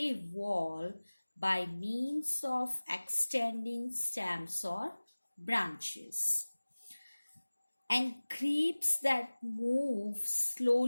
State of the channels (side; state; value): both; inverted; correlation -1.00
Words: wall by means of extending stems or branches, and creeps that move